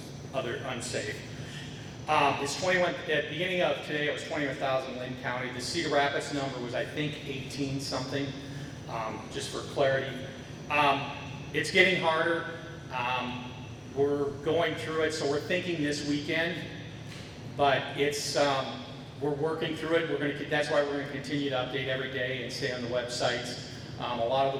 other unsafe. It's 21. At the beginning of today, it was 21,000 in Lynn County. The Cedar Rapids number was, I think, 18 something. Just for clarity, it's getting harder. We're going through it, so we're thinking this weekend. But it's we're working through it. That's why we're going to continue to update every day and stay on the websites. A lot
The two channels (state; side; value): identical; both; correlation 1.00